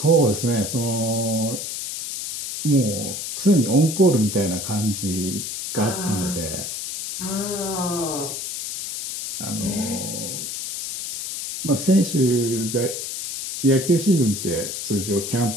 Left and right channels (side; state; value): left; noise; hiss, 5 dB below the sound